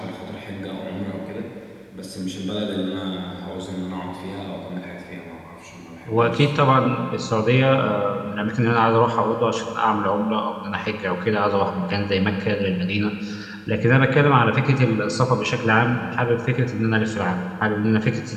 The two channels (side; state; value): both; identical; correlation 1.00